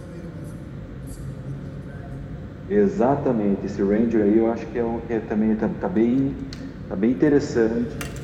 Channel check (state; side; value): identical; both; correlation 1.00